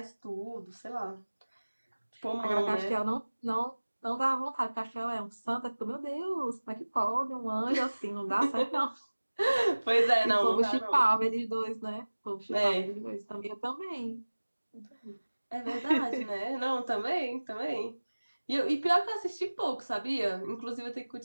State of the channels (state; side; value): inverted; both; correlation -1.00